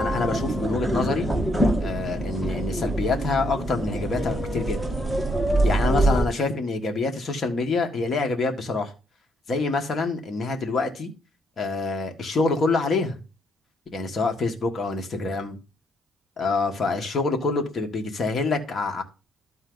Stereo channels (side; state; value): both; normal; correlation 0.72